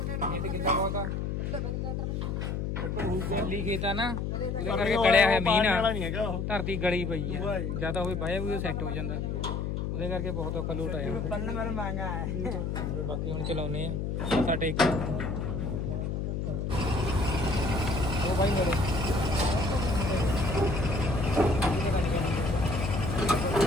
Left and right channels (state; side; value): noise; left; hum, 2 dB below the sound